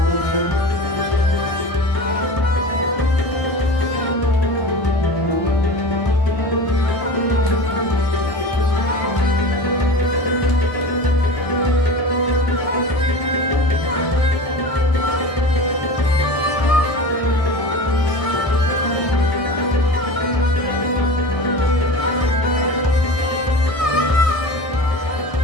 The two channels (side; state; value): right; late; 1.6 ms